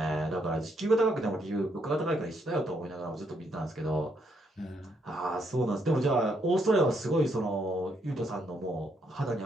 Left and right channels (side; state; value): both; normal; correlation 0.75